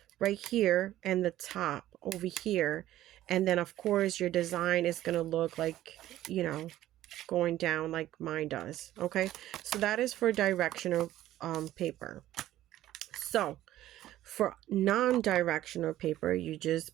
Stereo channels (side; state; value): left; quieter; 13.9 dB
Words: right here and the top over here. And then of course your design is going to look like, going down like mine does. Okay, so that is for directional paper. So for non-directional paper, you